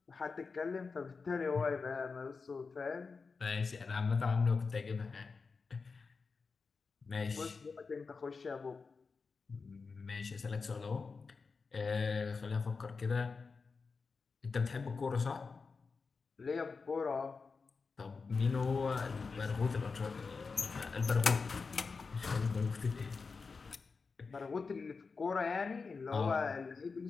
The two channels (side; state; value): right; quieter; 4.7 dB